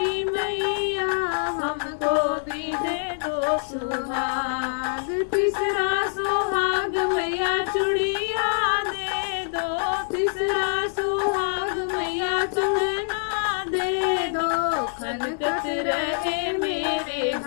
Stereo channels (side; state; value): right; silent; 62 dB below the other